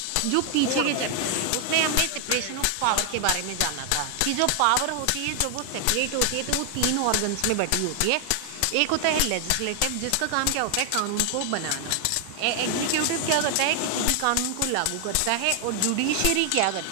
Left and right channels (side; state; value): both; different; correlation 0.00